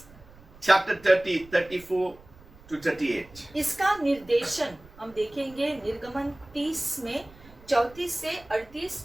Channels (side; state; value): right; noise; rumble, 23 dB below the sound